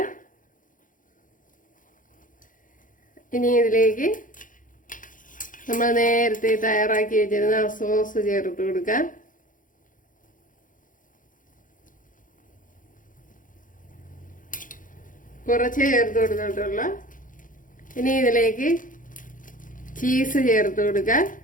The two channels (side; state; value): right; late; 0.39 ms